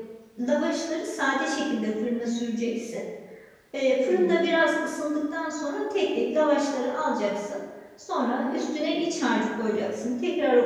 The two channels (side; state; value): both; identical; correlation 1.00